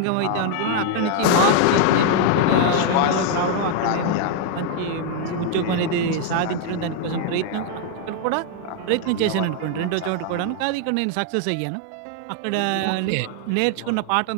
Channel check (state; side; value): different; both; correlation 0.00